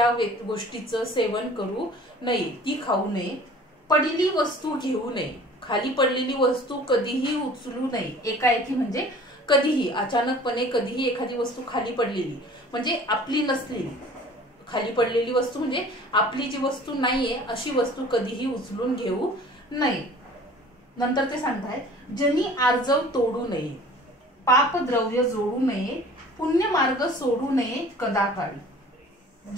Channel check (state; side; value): normal; both; correlation 0.47